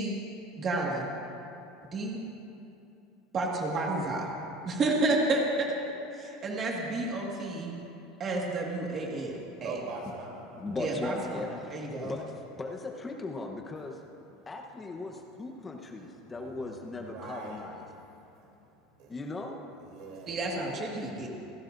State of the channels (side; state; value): both; normal; correlation 0.46